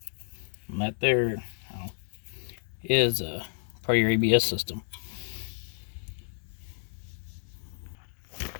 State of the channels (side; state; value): right; silent; digital silence